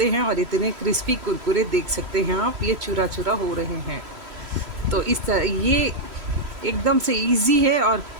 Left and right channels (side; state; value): left; late; 3.1 ms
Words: हैं और इतने क्रिस्पी कुरकुरे देख सकते हैं आप, ये चूरा चूरा हो रहे हैं। तो इस तरह ये एकदम से इजी है और